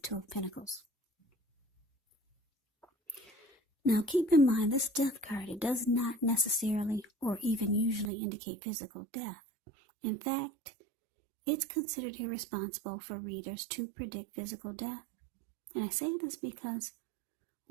of Pentacles. Now keep in mind, this Death card, it does not necessarily or even usually indicate physical death. In fact, it's considered irresponsible for readers to predict physical death. And I say this because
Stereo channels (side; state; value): left; drops out; at 8.1 s